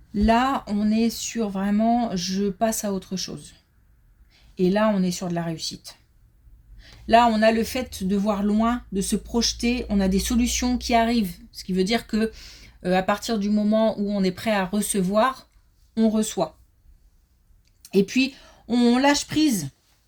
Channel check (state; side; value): identical; both; correlation 1.00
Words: Là, on est sur vraiment, je passe à autre chose. Et là, on est sur de la réussite. Là, on a le fait de voir loin, de se projeter, on a des solutions qui arrivent. Ce qui veut dire que à partir du moment où on est prêt à recevoir, on reçoit. Et puis, on lâche prise.